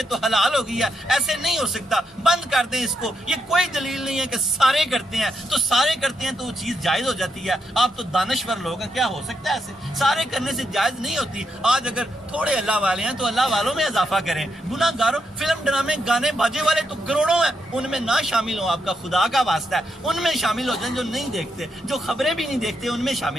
تو حلال ہو گئی ہے. ایسے نہیں ہو سکتا. بند کر دیں اس کو. یہ کوئی دلیل نہیں ہے کہ سارے کرتے ہیں تو سارے کرتے ہیں تو وہ چیز جائز ہو جاتی ہے. آپ تو دانشور لوگ ہیں، کیا ہو سکتا ہے ایسے؟ سارے کرنے سے جائز نہیں ہوتی. آج اگر تھوڑے اللہ والے ہیں تو اللہ والوں میں اضافہ کریں. گناہ گاروں، فلم، ڈرامے، گانے باجے والے تو کروڑوں ہیں، ان میں نہ شامل ہوں. آپ کا خدا کا واسطہ ہے ان میں شامل ہو جائیں. جو نہیں دیکھتے، جو خبریں بھی نہیں دیکھتے، ان میں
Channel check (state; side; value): normal; both; correlation 0.81